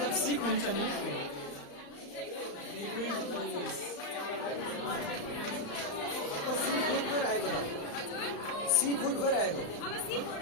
सिक हुन्छ नि सी फुड गएर आएको त सी फुड गएर आएको अब सी फुड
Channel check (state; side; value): late; right; 35 ms